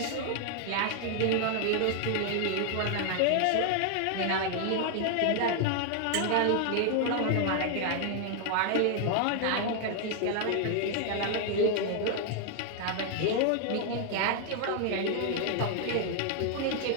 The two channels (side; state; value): both; different; correlation 0.00